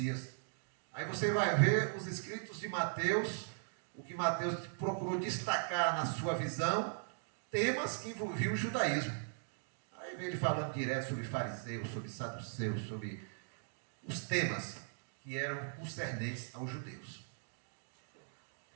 Aí você vai ver os escritos de Mateus, o que Mateus procurou destacar na sua visão, temas que envolviam o judaísmo. Aí vem ele falando direto sobre fariseus, sobre saduceus, sobre os temas que eram concernentes aos judeus.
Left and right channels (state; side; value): silent; left; digital silence